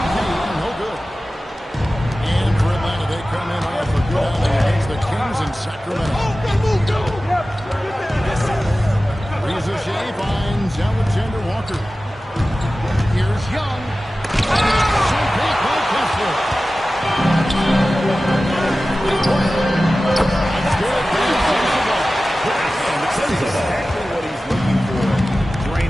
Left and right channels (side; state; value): both; normal; correlation 0.96